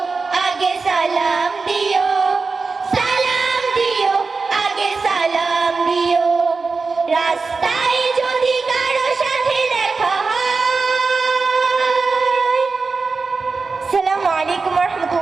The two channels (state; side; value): quieter; left; 4.3 dB